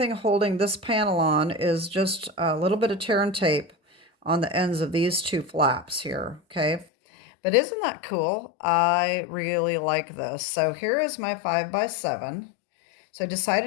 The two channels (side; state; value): right; drops out; at 6.9 s